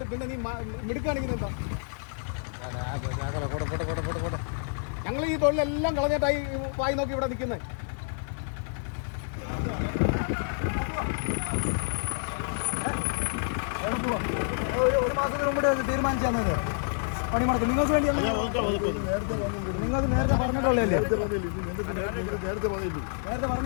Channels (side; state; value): right; silent; digital silence